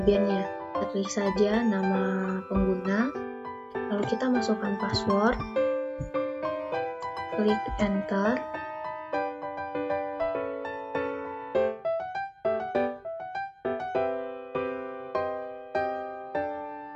Kita klik saja nama pengguna, lalu kita masukkan password, klik enter.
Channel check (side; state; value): both; identical; correlation 1.00